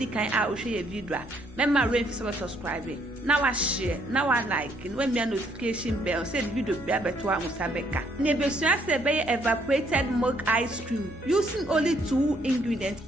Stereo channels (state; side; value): normal; both; correlation 0.68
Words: can I will share a video. Remember rain for subscribing. Now I share, now I like, and when me a notification bell, say the video be able to Musabeka. Nebesua say evaporated milk ice cream using only 2 ingredients.